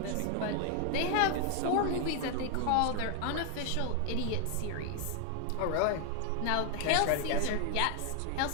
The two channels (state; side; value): different; both; correlation 0.00